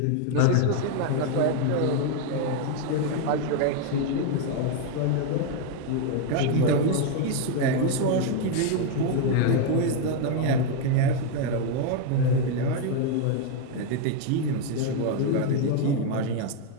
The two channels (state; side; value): different; both; correlation 0.01